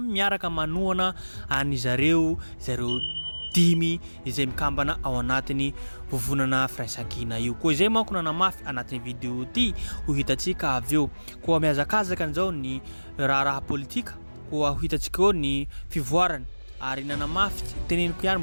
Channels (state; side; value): inverted; both; correlation -1.00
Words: miaraka manohana any zareo dimy izay mikambana ao anatin'ny vovonana firaisan-kina io koa izay manko nanamafy anatin'ny vidéo ty ho hitantsika avy eo koa mihazakazaka an'izao ny raha politika koa ho hitantsika eo ny fivoarany ary nanamafy teneniko ihany